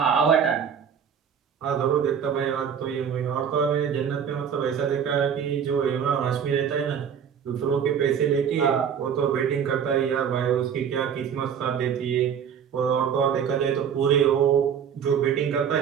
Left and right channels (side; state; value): left; quieter; 7.8 dB